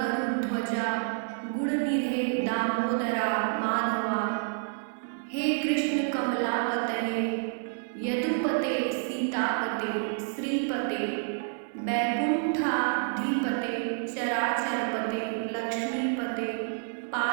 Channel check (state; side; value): silent; left; digital silence